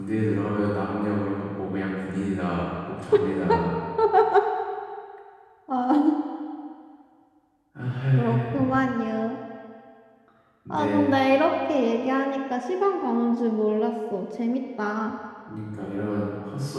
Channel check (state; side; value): identical; both; correlation 1.00